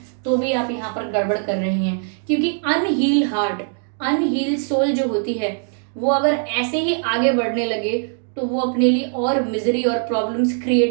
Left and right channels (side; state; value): left; silent; 57 dB below the other